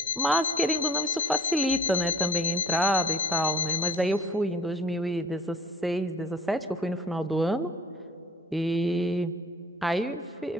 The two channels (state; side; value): normal; both; correlation 0.46